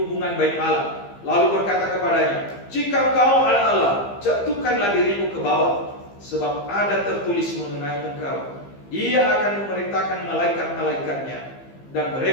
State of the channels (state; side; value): late; right; 15 ms